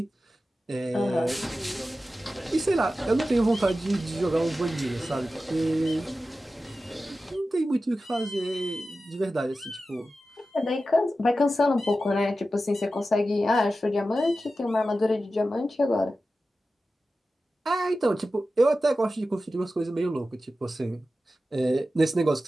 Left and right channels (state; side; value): normal; both; correlation 0.93